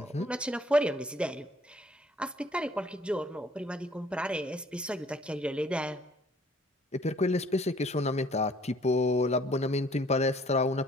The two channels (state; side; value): normal; both; correlation 0.58